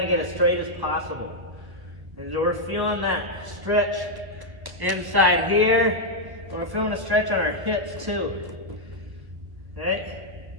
to get as straight as possible. And so we're feeling that stretch inside here. We're feeling a stretch on our hips too. Right?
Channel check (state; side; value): late; left; 1.3 ms